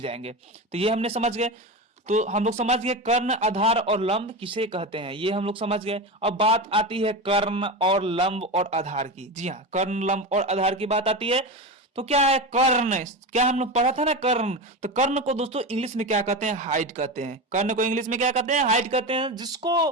जाएंगे। तो ये हमने समझ गए। तो हम लोग समझ गए कर्ण, आधार और लंब किसे कहते हैं, ये हम लोग समझ गए। अब बात आती है कर्ण और लंब और आधार की। जी हाँ, कर्ण, लंब और आधार की बात आती है। तो क्या है कर्ण, क्या हम लोग पढ़ा था ना कर्ण। तो कर्ण को दोस्तों इंग्लिश में क्या कहते हैं, हाइट कहते हैं। कर्ण को इंग्लिश में क्या कहते हैं, हाइट कहते हैं।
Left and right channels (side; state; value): both; normal; correlation 0.22